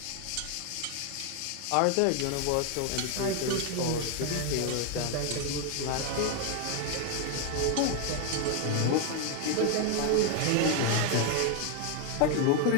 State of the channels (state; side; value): different; both; correlation 0.01